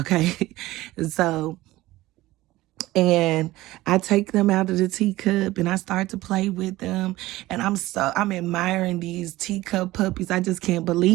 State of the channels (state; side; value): quieter; left; 17.5 dB